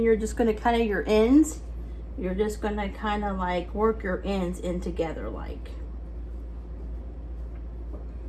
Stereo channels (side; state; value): both; identical; correlation 1.00